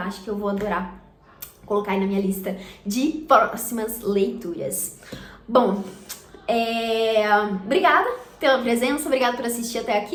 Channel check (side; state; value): both; identical; correlation 1.00